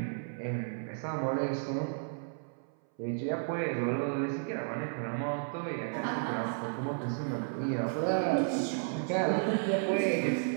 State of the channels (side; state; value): left; silent; 56 dB below the other